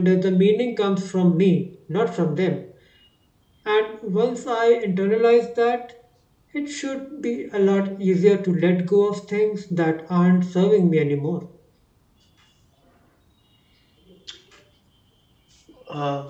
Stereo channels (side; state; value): both; identical; correlation 1.00